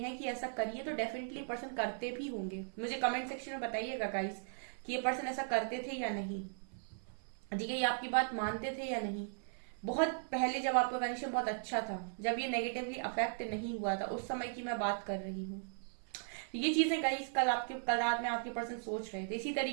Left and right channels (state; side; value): silent; left; 53 dB below the other